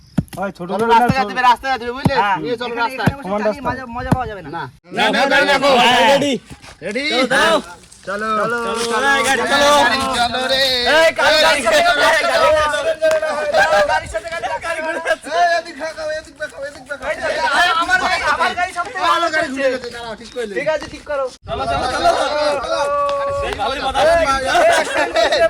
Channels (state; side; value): identical; both; correlation 1.00